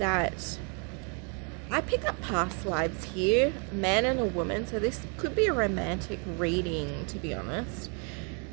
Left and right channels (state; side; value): quieter; left; 37.4 dB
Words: I pick up past lives here, a man and a woman, so this could be a romantic reading, to be honest.